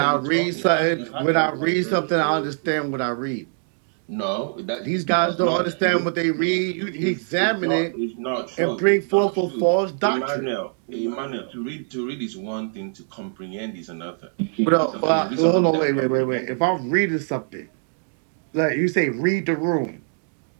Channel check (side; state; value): left; silent; digital silence